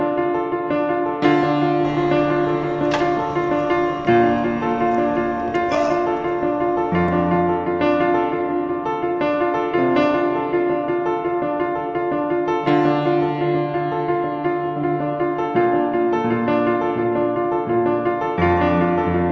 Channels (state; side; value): identical; both; correlation 1.00